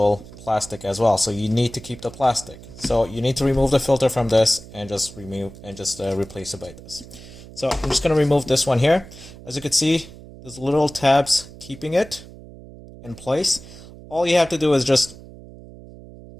plastic as well. So you need to keep the plastic. So you need to remove the filter from this and just replace it by this. So I'm just going to remove this one here. As you can see, there's little tabs keeping it in place. All you have to do is just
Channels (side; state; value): right; noise; hum, 18 dB below the sound